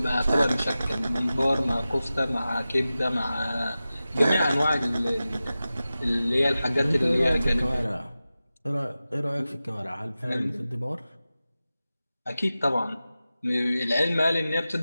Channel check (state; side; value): inverted; both; correlation -0.95